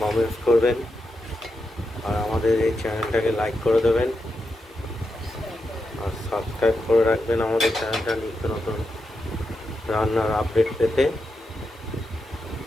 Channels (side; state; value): both; normal; correlation 0.87